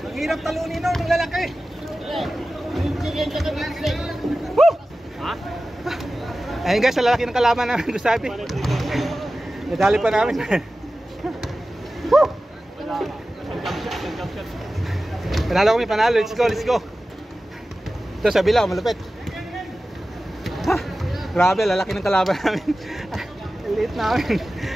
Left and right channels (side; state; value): both; normal; correlation 0.95